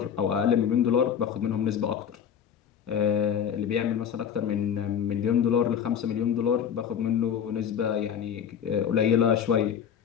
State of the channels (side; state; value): right; quieter; 8.3 dB